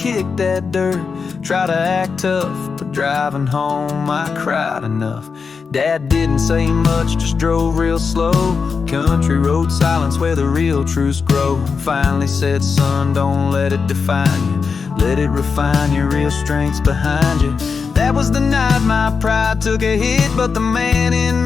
that dirt, tried to act tough, but driving home I cried enough. Dad didn't say much, just drove real slow. Country road silence where the real truths grow. Finally said, son, don't let it define you. Let it refine your real strengths behind you. That was the night my pride took a hit, but the man in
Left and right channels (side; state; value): right; quieter; 5.3 dB